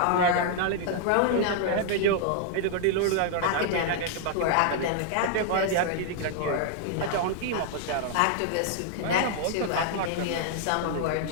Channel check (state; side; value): different; both; correlation 0.00